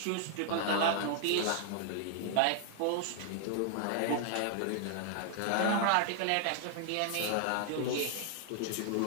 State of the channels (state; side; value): different; both; correlation 0.00